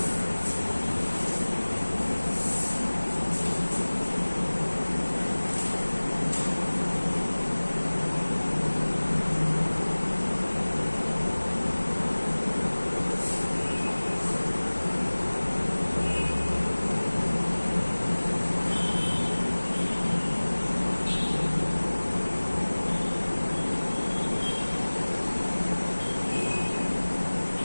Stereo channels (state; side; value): inverted; both; correlation -1.00